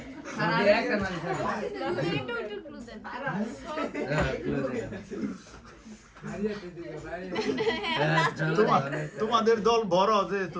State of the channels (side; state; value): both; identical; correlation 1.00